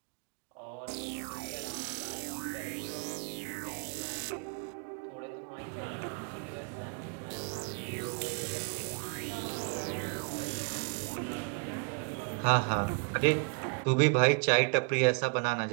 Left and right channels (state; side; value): quieter; left; 36.3 dB